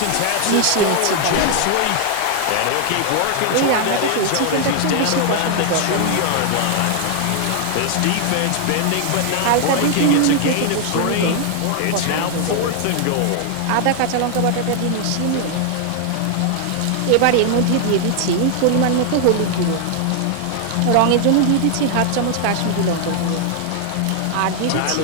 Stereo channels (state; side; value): different; both; correlation 0.00